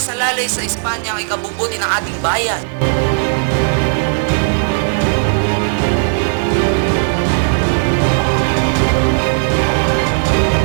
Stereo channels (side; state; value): left; silent; digital silence